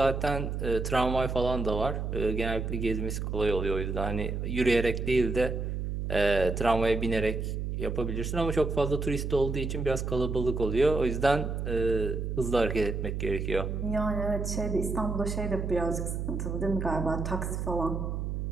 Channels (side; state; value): right; noise; hum, 3 dB below the sound